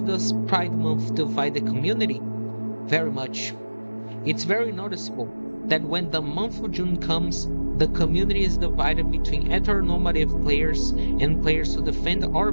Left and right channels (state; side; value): inverted; both; correlation -1.00